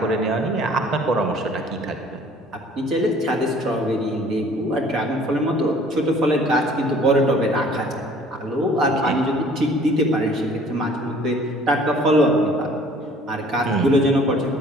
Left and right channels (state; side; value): normal; both; correlation 0.53